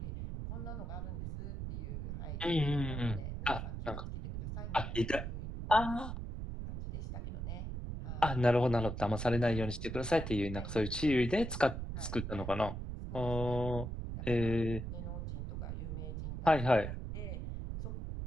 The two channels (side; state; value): right; noise; rumble, 5 dB below the sound